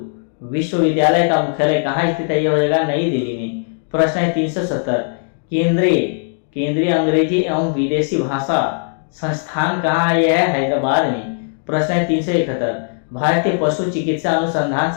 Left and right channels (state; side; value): silent; right; 64 dB below the other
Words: विश्वविद्यालय का मुख्यालय कहाँ स्थित है? यह हो जाएगा नई दिल्ली में। प्रश्न है 370, केंद्रीय अंग्रेजी एवं विदेशी भाषा संस्थान कहाँ है? यह है हैदराबाद में। प्रश्न है 371, भारतीय पशु चिकित्सा अनुसंधान